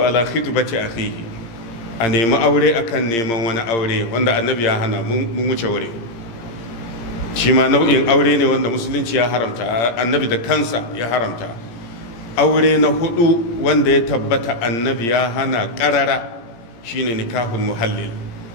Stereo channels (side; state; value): right; late; 17 ms